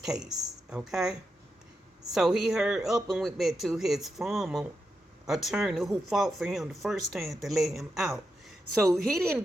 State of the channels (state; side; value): normal; both; correlation 0.86